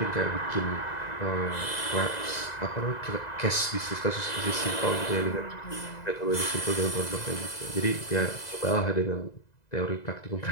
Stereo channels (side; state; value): right; late; 2.0 ms